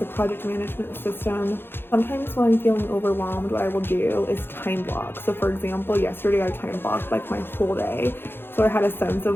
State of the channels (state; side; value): late; right; 0.10 ms